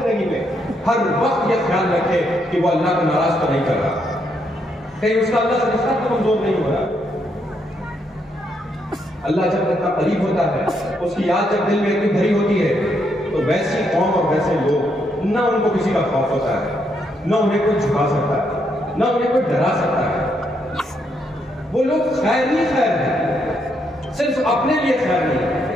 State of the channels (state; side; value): normal; both; correlation 0.76